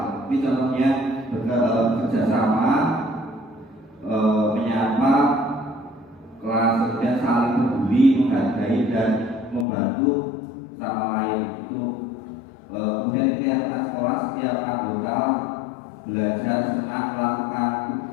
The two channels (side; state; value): right; drops out; at 9.7 s